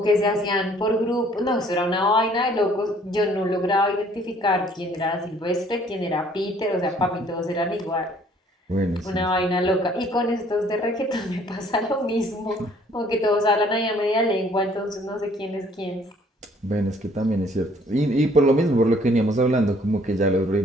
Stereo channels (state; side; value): normal; both; correlation 0.59